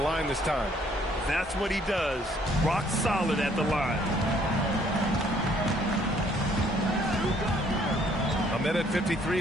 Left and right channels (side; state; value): both; normal; correlation 0.63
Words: this time. That's what he does. Rock solid at the line. A minute 53